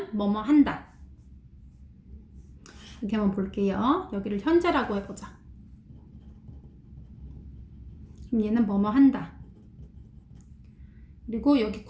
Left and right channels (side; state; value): both; identical; correlation 1.00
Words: 뭐뭐 한다. 이렇게 한번 볼게요. 여기를 현재라고 해보자. 그럼 얘는 뭐뭐 한다. 그리고 여기